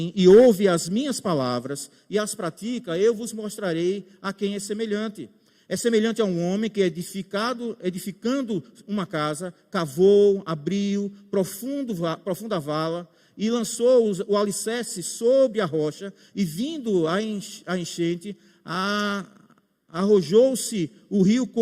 e ouve as minhas palavras e as pratica, eu vos mostrarei a quem é semelhante. É semelhante a um homem que, edificando uma casa, cavou, abriu profunda vala e lançou o alicerce sobre a rocha, e vindo a enchente, arrojou-se o rio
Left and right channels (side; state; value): both; identical; correlation 1.00